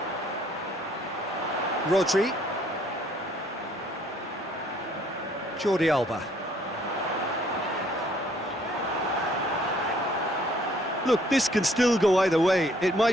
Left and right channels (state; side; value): normal; both; correlation 0.62